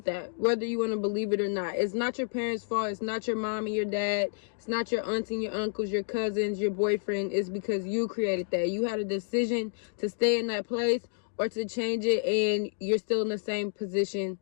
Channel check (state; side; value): silent; right; digital silence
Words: that, whether you want to believe it or not. It's not your parents' fault. It's not your mom and your dad. It's not your aunts and your uncles, your cousins, your boyfriend. It's because you created that. You had a decision to stay in that place or to change it, and you're still in the same position.